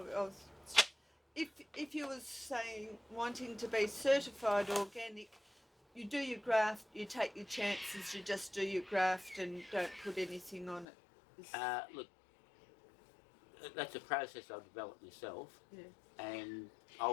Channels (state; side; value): drops out; right; at 10.9 s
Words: if you were saying wanting to be certified organic, you do your graft, you take your chances, you just do your graft and don't put anything on it. Look, that's a process I've developed myself, Yeah. and I